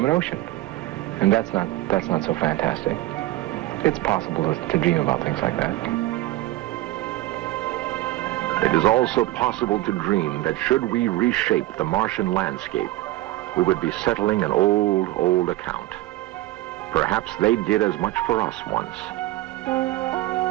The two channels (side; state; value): left; quieter; 16.8 dB